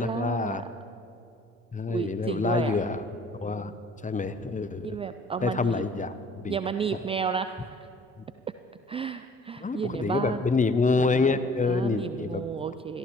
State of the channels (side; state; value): both; normal; correlation 0.54